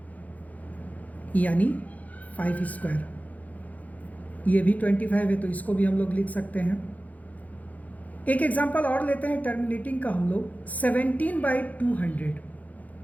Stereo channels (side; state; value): right; late; 0.076 ms